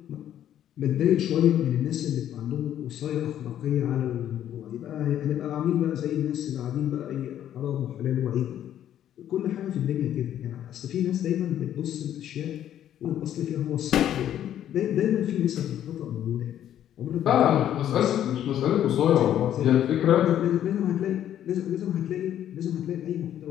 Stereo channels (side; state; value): right; quieter; 11.0 dB